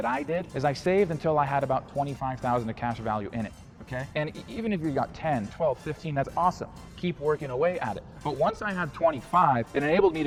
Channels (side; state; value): both; identical; correlation 1.00